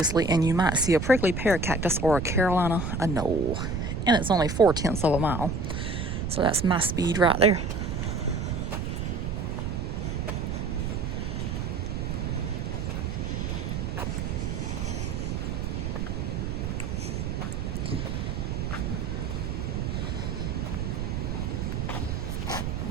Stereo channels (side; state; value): right; noise; rumble, 2 dB below the sound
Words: and you might see a prickly pear cactus or a Carolina anole. And it's only 4/10 of a mile. So that's my speed right there.